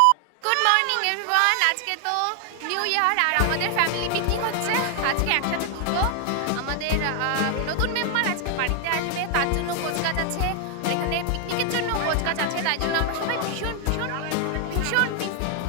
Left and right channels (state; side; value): different; both; correlation 0.00